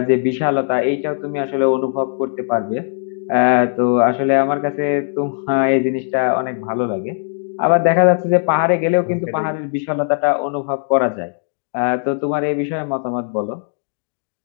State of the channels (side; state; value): right; silent; digital silence